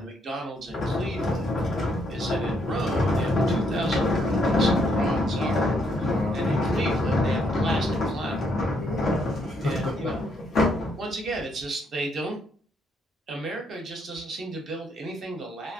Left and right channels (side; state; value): both; normal; correlation 0.73